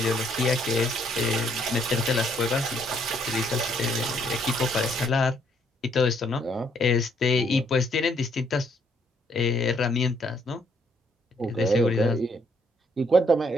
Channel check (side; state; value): both; normal; correlation 0.69